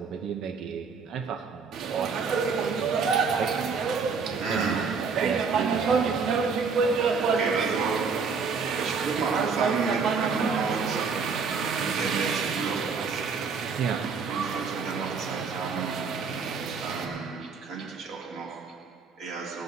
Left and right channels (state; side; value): quieter; left; 5.2 dB